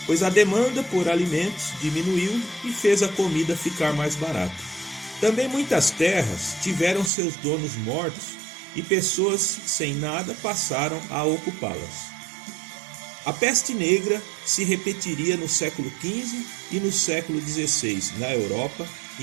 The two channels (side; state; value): left; drops out; at 7.1 s